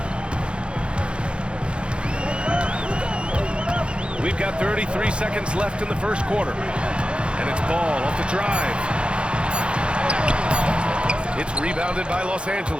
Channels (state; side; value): late; left; 0.056 ms